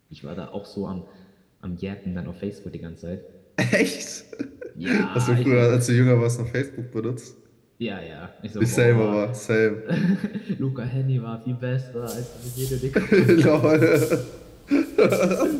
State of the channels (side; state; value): both; identical; correlation 1.00